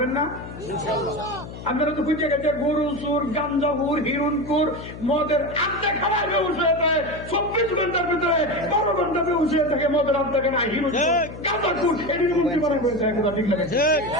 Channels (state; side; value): noise; left; hum, 12 dB below the sound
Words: না? আপনারা তো খুঁজে গেছে গরু চুর, গাঞ্জাপুর, হিরুনপুর, মদের আড্ডা খাওয়ার ব্যবস্থা থাকে 24 ঘন্টার ভিতরে 12 ঘন্টা ব্যবস্থা থাকে মদের আড্ডা কেনা হিরুনপুর গাঁজাপুর এটির মন্ত্রী বানাই হয়েছে। একদম ঠিক লাগে,